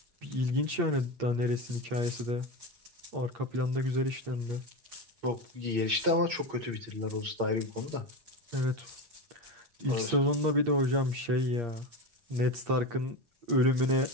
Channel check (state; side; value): late; left; 8.6 ms